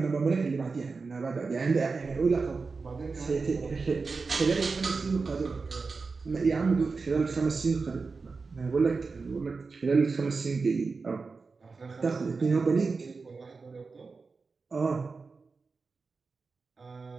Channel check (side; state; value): left; quieter; 4.4 dB